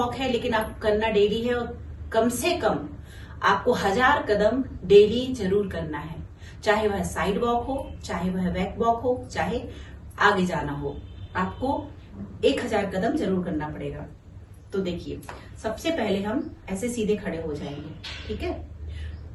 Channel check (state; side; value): identical; both; correlation 1.00